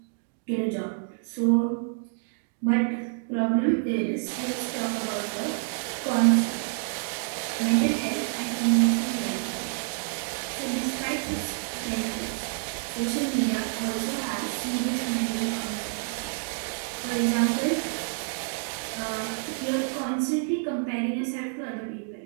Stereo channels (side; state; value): left; silent; 59 dB below the other